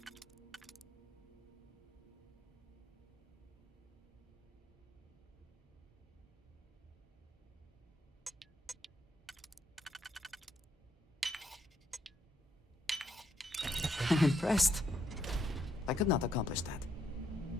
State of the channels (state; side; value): normal; both; correlation 0.75